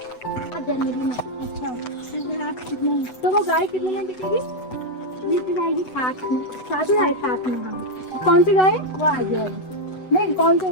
जनवरी में। अच्छा तो वो गाय कितने में बिकेगी? बीती जाएगी 7 में। 7 में। हाँ कौन सी गाय? वो आ जाएगी। नहीं कौन सी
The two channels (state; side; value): late; right; 8.0 ms